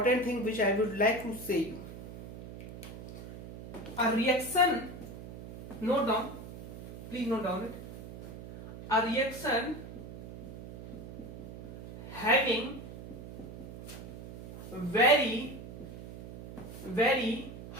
thing which I would like to say you, a reaction, note down, please note down it, a reaction having very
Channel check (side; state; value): right; noise; hum, 13 dB below the sound